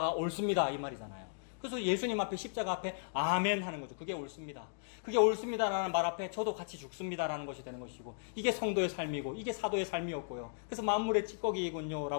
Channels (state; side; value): silent; right; digital silence